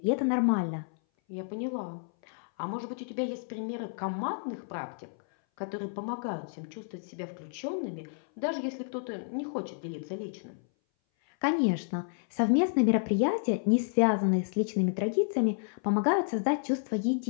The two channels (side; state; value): right; silent; 57 dB below the other